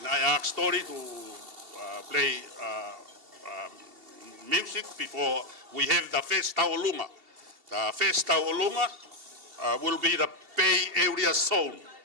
I ask Tori to play music before we have the Festa Olunga. The Festa Olunga will be the Bay Area zone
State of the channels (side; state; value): left; late; 2.7 ms